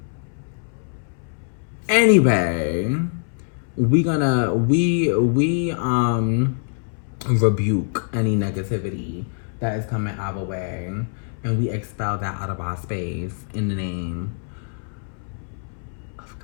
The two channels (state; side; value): silent; right; 63 dB below the other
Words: Anyway, we rebuke any negativity that is coming our way, and we expel that out of our space in the name of